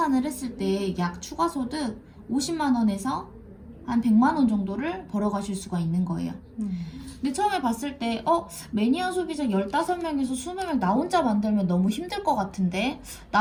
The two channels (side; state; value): both; identical; correlation 1.00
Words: 했을 때 약 추가소득 50만원에서 한 100만원 정도를 벌어가실 수가 있는 거예요. 근데 처음에 봤을 때 매니아 소비자 15명에서 20명 나 혼자 만들면 너무 힘들 것 같은데